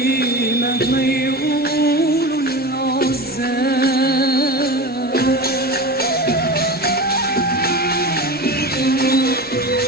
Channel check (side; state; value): both; normal; correlation 0.29